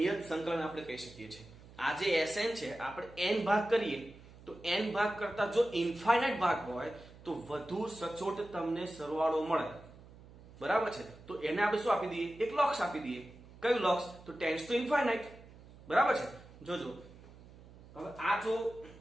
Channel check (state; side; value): noise; right; hum, 20 dB below the sound